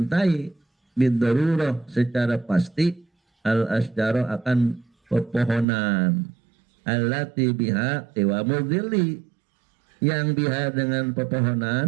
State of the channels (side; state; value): left; drops out; at 5.7 s